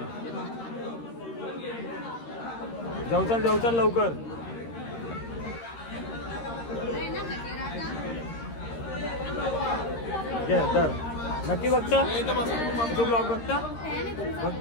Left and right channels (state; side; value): late; right; 13 ms